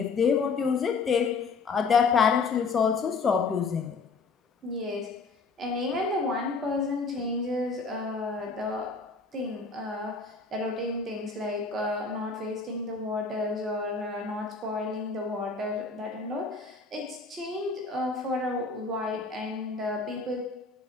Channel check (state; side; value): quieter; right; 4.5 dB